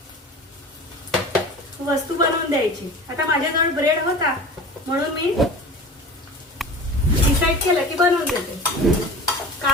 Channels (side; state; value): both; normal; correlation 0.36